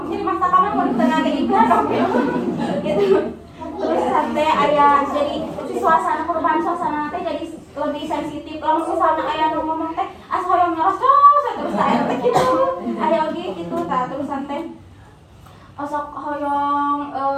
nyeri mastaka mah mun teu ngagegikeun gitu. Terus teh aya jadi suasana perubahan suasana teh jadi lebih sensitif. Lamun misalnya aya nu ngomong teh as hoyong nyoros terus aya teh kitu. Aya oge kitu tah terusan teh osok hoyong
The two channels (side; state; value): both; identical; correlation 1.00